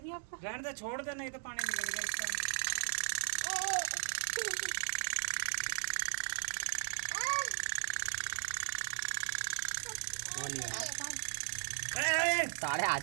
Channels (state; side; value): silent; left; 53 dB below the other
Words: आपको? रहने दे, छोड़ दे, नहीं तो पानी निकलेगा इसका। सारे आ